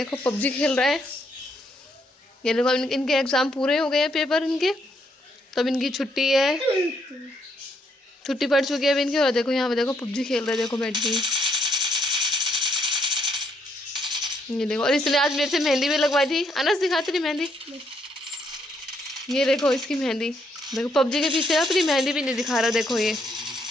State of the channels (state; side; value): normal; both; correlation 0.73